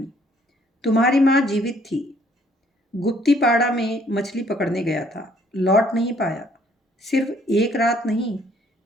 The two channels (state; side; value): normal; both; correlation 0.63